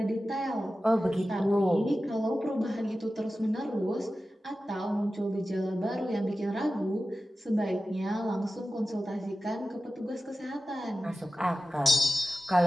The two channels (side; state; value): both; normal; correlation 0.94